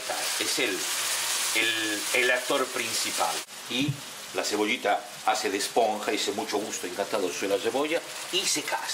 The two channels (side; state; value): both; identical; correlation 1.00